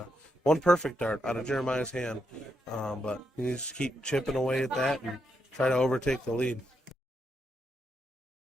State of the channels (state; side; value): normal; both; correlation 0.81